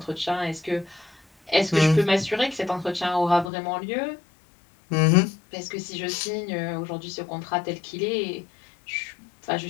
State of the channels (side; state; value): right; drops out; at 3.5 s